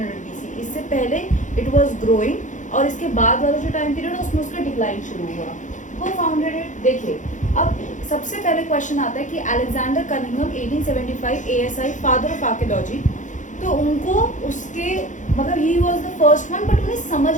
BC। इससे पहले इट वाज ग्रोइंग और इसके बाद वाला जो टाइम पीरियड है उसमें उसका डिक्लाइन शुरू हुआ। वो फाउंडेड इट। देखिए अब सबसे पहले क्वेश्चन आता है कि Alexander Cunningham 1875 ASI father of archaeology, तो उनको उसके मतलब he was the first one, but उन्हें समझ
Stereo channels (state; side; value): late; right; 0.36 ms